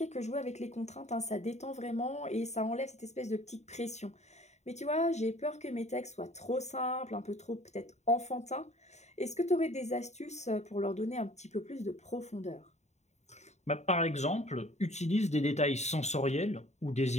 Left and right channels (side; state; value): right; late; 0.33 ms